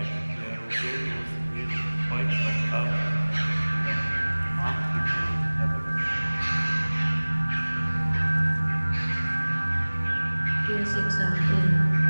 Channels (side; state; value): both; inverted; correlation -1.00